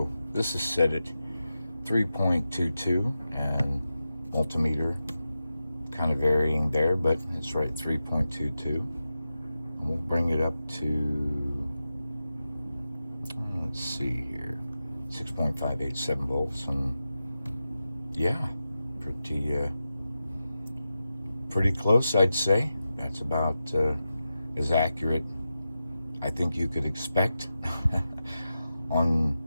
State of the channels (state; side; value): inverted; both; correlation -0.91